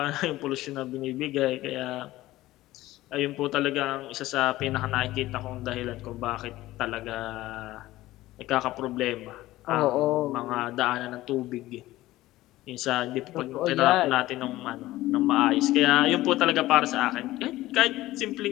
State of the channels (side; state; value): right; quieter; 16.6 dB